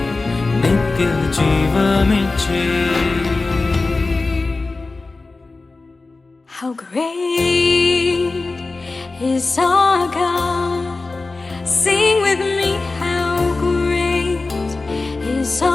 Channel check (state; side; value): quieter; right; 3.5 dB